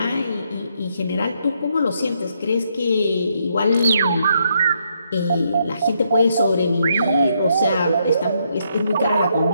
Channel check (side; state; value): both; inverted; correlation -0.75